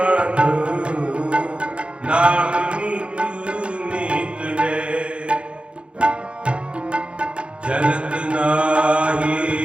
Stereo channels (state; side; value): late; left; 0.058 ms